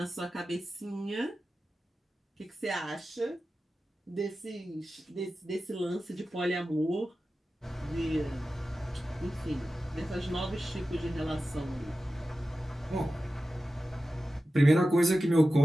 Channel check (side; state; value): both; normal; correlation 0.94